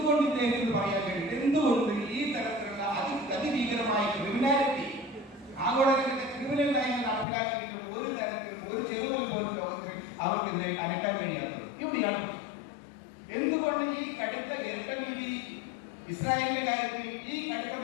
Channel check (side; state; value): right; drops out; at 7.2 s